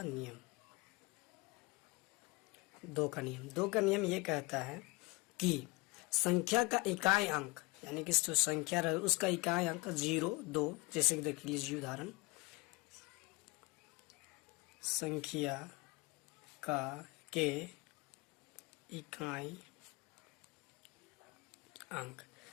नियम ये कहता है कि संख्या का इकाई अंक यानी कि जो संख्या रहे उसका इकाई अंक 0 2, जैसे कि देख लीजिए उदाहरण, संख्या का के इकाई अंक,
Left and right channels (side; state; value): right; quieter; 24.9 dB